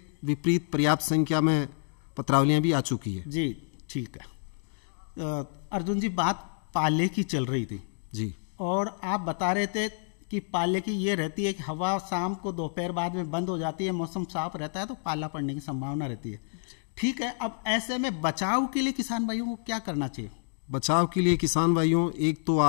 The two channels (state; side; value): silent; right; digital silence